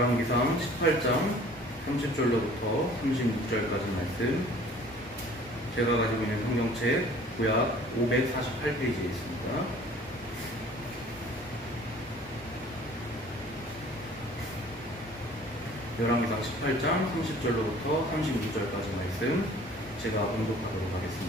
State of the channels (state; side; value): normal; both; correlation 0.50